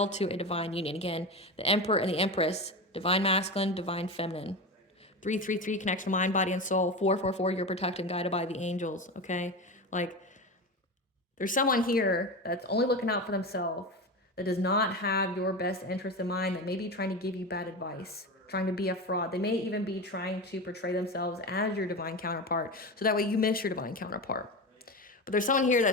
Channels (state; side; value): normal; both; correlation 0.23